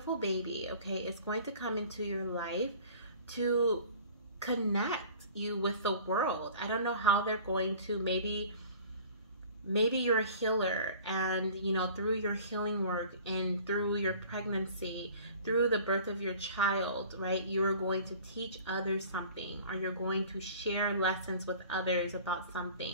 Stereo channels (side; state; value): both; inverted; correlation -0.46